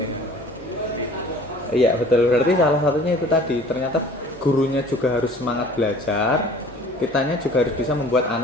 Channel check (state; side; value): normal; both; correlation 0.48